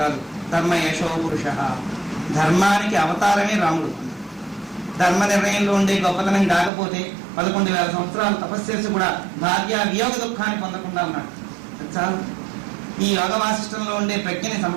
కాదు, ధర్మ యశో పురుష, ధర్మానికి అవతారమే రాముడు. ధర్మ నిర్ణయంలో ఉండే గొప్పతనం కాకపోతే 11,000 సంవత్సరాలు తపస్సు చేసి కూడా భార్య వియోగ దుఃఖాన్ని పొందకుండా ఉన్నాడు. చాలు. ఈ యోగ వాసిష్టంలో ఉండే ప్రజ్ఞని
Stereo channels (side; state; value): left; drops out; at 6.7 s